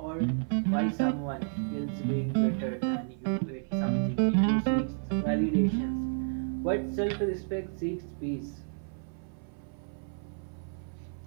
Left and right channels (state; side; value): silent; left; 57 dB below the other